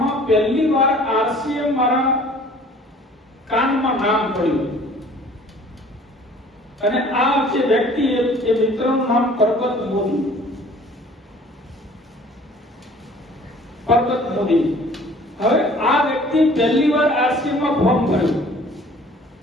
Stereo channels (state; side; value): normal; both; correlation 0.51